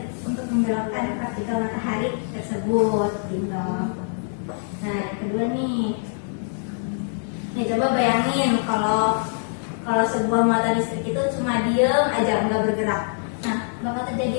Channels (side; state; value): right; silent; digital silence